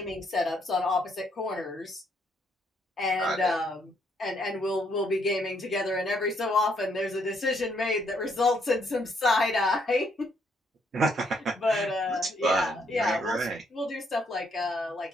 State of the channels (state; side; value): normal; both; correlation 0.71